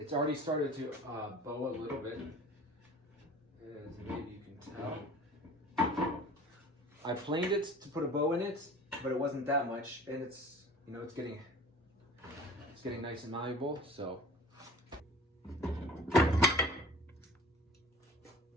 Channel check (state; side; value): normal; both; correlation 0.43